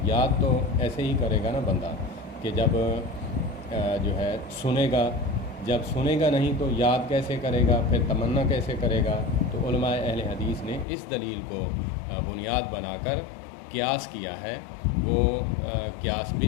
یاد تو ایسے ہی کرے گا نا بندہ کہ جب جو ہے سنے گا، جب سنے گا نہیں تو یاد کیسے کرے گا، پھر تمنا کیسے کرے گا؟ تو علماء اہل حدیث نے اس دلیل کو بنیاد بنا کر قیاس کیا ہے۔ وہ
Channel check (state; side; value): drops out; right; at 10.9 s